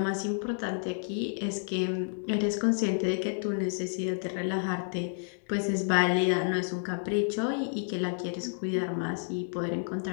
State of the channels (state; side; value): silent; right; digital silence